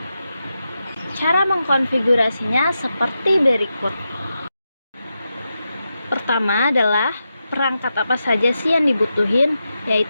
Cara mengkonfigurasinya seperti berikut. Pertama adalah perangkat apa saja sih yang dibutuhin,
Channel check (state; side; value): inverted; both; correlation -0.88